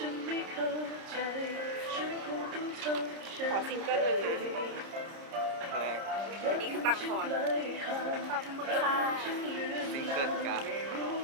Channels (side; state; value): left; late; 30 ms